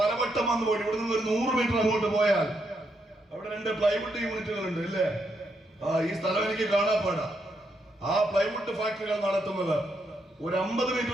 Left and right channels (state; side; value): normal; both; correlation 0.79